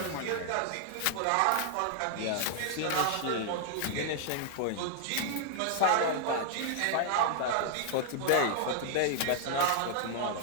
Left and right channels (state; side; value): different; both; correlation -0.01